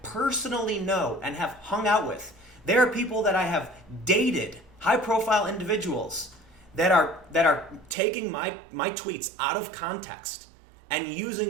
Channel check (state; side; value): drops out; left; at 8.0 s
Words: personally know, and have hung out with. There are people that I have dated, high-profile individuals, that are taking my tweets out of context and